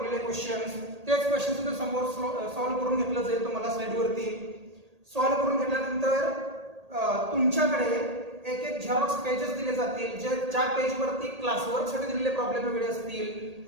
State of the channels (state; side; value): late; left; 1.8 ms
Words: क्वेश्चन्स, तेच क्वेश्चन सुद्धा समोर सॉल्व्ह करून घेतलं जाईल तुम्हाला स्लाइडवरती. सॉल्व्ह करून घेतल्यानंतर तुमच्याकडे एक झेरॉक्स पेजेस दिले जातील, ज्या पेजवरती क्लासवर्कसाठी दिलेले प्रॉब्लेम वेगळे असतील,